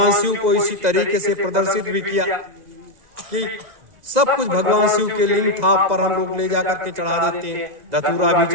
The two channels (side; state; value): left; late; 2.0 ms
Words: शिव को इसी तरीके से प्रदर्शित भी किया कि सब कुछ भगवान शिव के लिंग थाप पर हम लोग ले जाकर के चढ़ा देते हैं, धतूरा भी